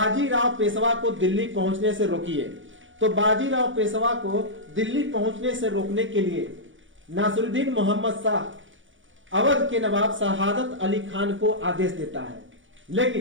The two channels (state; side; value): late; left; 0.56 ms